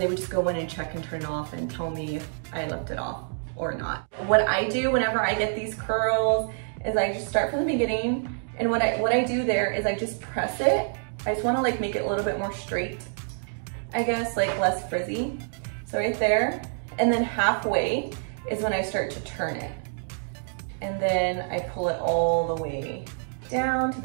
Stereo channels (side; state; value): left; silent; digital silence